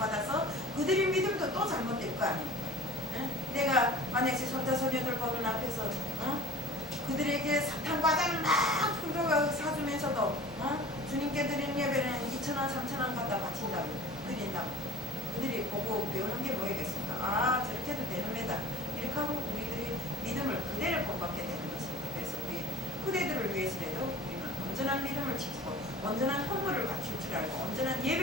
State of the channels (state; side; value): normal; both; correlation 0.43